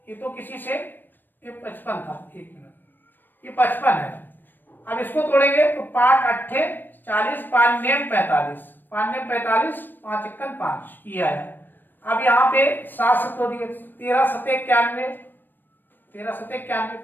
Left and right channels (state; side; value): late; right; 0.093 ms